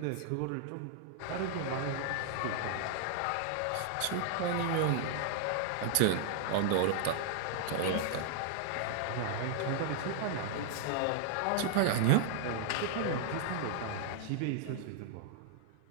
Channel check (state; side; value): different; both; correlation -0.01